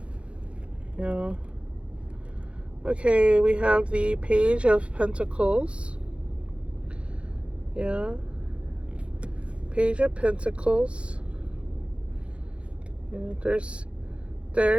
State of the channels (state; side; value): late; left; 0.060 ms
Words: Yeah. Okay, we have the Page of Pentacles. Yeah. Page of Pentacles. Yeah,